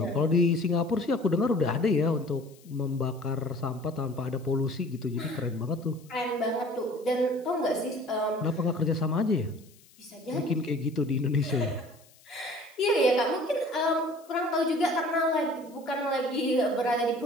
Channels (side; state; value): left; noise; hiss, 27 dB below the sound